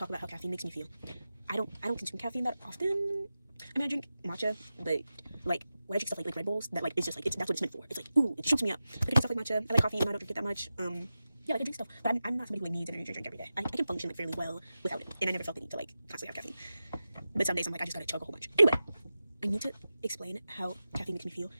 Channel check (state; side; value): inverted; both; correlation -0.94